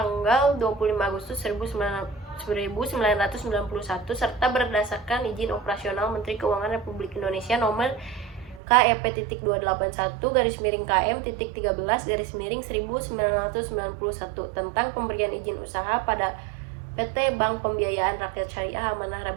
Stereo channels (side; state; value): left; drops out; at 8.6 s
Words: 25 Agustus 1991 serta berdasarkan izin operasional Menteri Keuangan Republik Indonesia nomor KEP-281-KM-13-1991 tentang pemberian izin usaha pada PT Bank Pembiayaan Rakyat Syariah Amanah